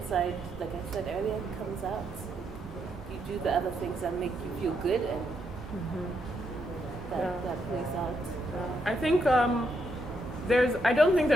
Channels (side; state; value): both; normal; correlation 0.78